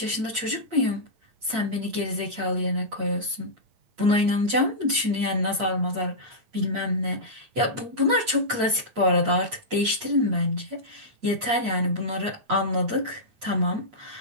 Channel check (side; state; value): left; late; 8.5 ms